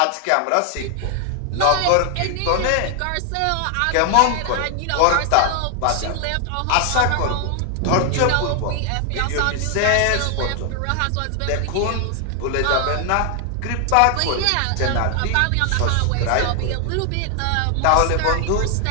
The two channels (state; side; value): different; both; correlation 0.00